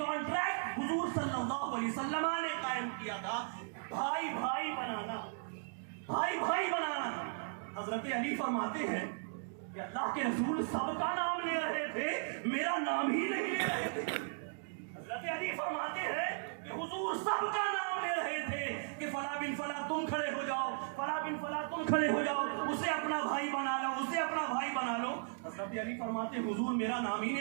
حضور صلی اللہ علیہ وسلم نے قائم کیا تھا, بھائی بھائی بنانا, بھائی بھائی بنانا. حضرت علی فرماتے ہیں کہ اللہ کے رسول سب کا نام لے رہے تھے, میرا نام ہی نہیں لے رہے تھے. حضرت علی فرماتے ہیں کہ حضور سب کا نام لے رہے تھے کہ فلاں بن فلاں تم کھڑے ہو جاؤ, فلاں بن فلاں تم کھڑے ہو جاؤ, اسے اپنا بھائی بنا لو, اسے اپنا بھائی بنا لو. حضرت علی فرماتے حضور میرا نام ہی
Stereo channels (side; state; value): left; silent; digital silence